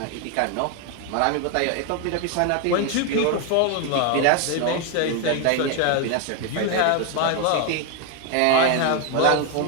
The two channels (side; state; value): both; different; correlation 0.01